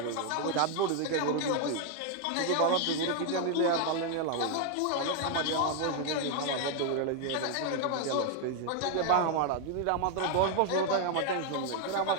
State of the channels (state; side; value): different; both; correlation 0.01